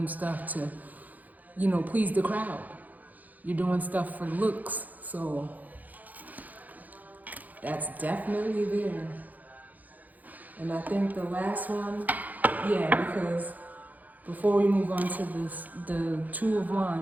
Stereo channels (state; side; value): late; left; 0.081 ms